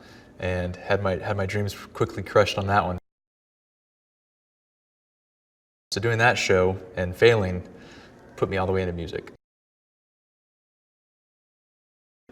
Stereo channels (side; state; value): both; identical; correlation 1.00